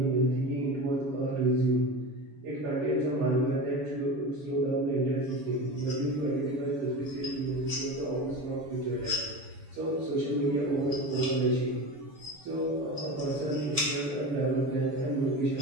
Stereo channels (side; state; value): left; late; 7.0 ms